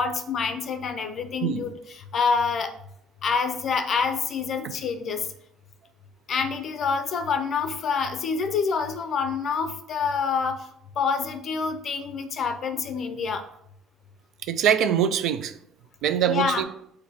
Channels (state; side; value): normal; both; correlation 0.51